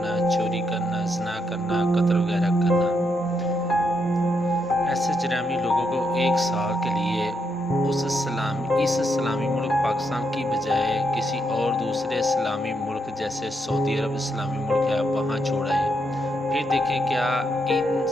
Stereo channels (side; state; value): both; normal; correlation 0.79